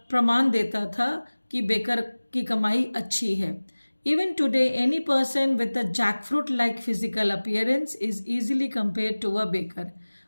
देता था कि बेकर की कमाई अच्छी है। Even today, any person with a jackfruit-like physical appearance is easily compared to a baker।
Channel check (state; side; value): inverted; both; correlation -1.00